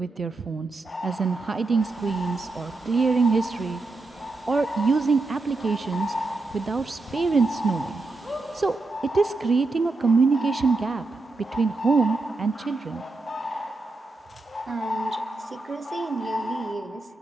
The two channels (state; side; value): quieter; left; 3.4 dB